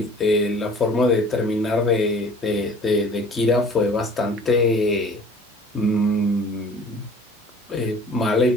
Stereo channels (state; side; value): normal; both; correlation 0.48